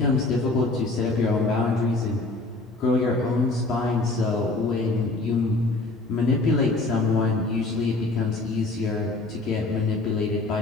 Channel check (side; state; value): right; quieter; 3.1 dB